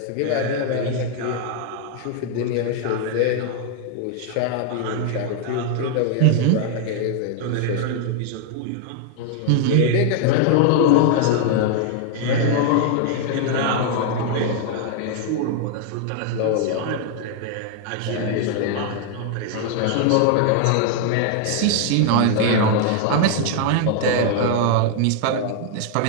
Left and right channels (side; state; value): both; different; correlation 0.00